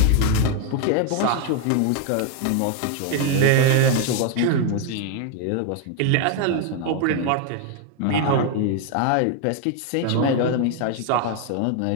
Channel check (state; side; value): different; both; correlation 0.00